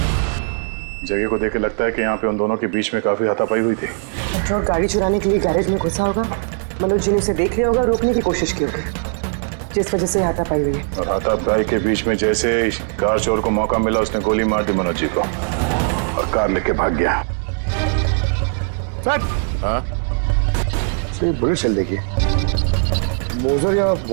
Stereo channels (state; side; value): silent; left; 59 dB below the other